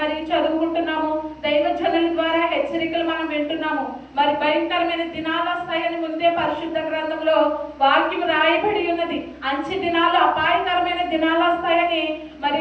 చదువుకుంటున్నాము, దైవజనుల ద్వారా హెచ్చరికలు మనం వింటున్నాము. మరి భయంకరమైన దినాలు వస్తాయని ముందే పరిశుద్ధ గ్రంథంలో వాక్యం రాయబడి ఉన్నది. అంచె దినాలు, అపాయకరమైన దినాలు వస్తాయని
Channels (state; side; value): identical; both; correlation 1.00